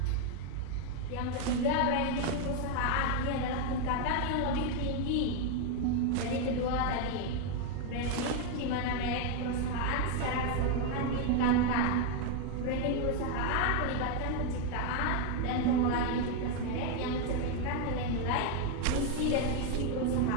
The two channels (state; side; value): different; both; correlation 0.01